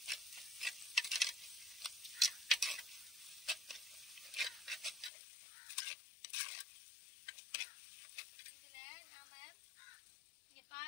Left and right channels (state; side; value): drops out; right; at 5.1 s